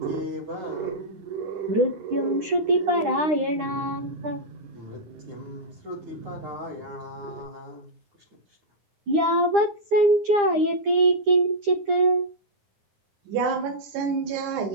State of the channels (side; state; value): left; late; 9.9 ms